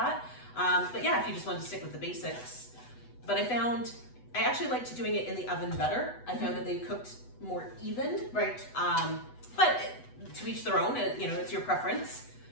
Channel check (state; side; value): late; right; 8.1 ms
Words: But yeah, if you just wanted to stick with the basics. But I actually liked doing it in the oven better. I found that they cooked more even. Right. But to each their own, it's your preference.